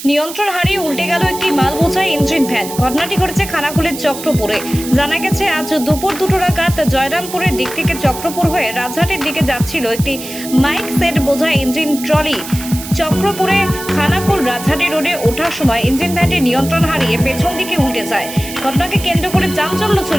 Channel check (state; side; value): noise; right; hiss, 11 dB below the sound